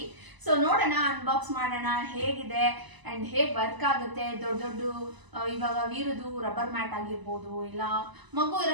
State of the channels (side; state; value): left; late; 1.0 ms